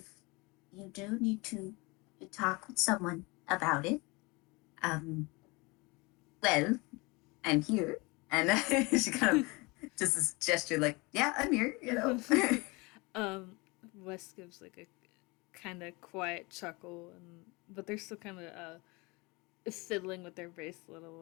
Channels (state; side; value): quieter; right; 25.8 dB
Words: you do need to talk with someone about it, um, well, I'm here. And she kind of just this gesture like, yeah, I'm here, you know. um, Wes gives like a kind of quiet chuckle, and but they're still kind of fiddling with their bracelet a